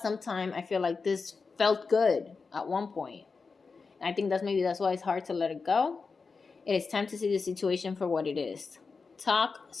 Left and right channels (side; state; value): right; quieter; 4.7 dB